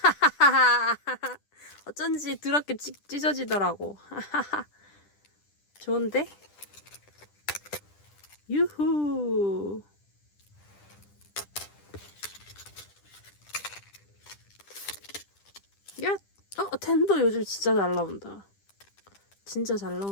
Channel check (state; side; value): late; right; 10 ms